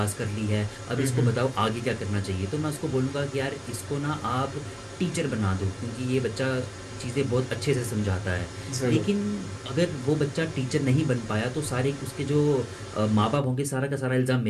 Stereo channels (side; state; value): both; identical; correlation 1.00